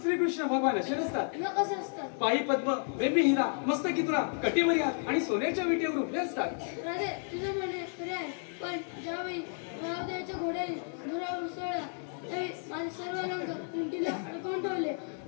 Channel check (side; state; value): right; silent; 55 dB below the other